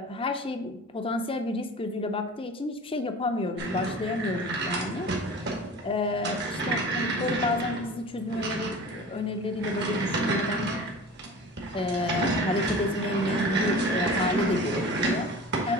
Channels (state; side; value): normal; both; correlation 0.38